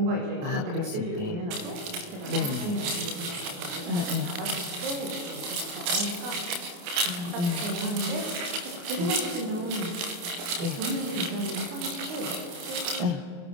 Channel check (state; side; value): late; left; 28 ms